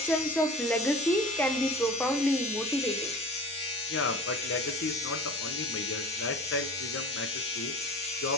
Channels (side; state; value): both; normal; correlation 0.38